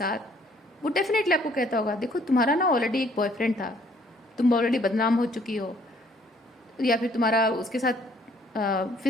वो डेफिनेटली आपको कहता होगा देखो तुम्हारा ना ऑलरेडी एक बॉयफ्रेंड था, तुम ऑलरेडी बदनाम हो चुकी हो, या फिर तुम्हारा उसके साथ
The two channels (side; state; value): both; normal; correlation 0.62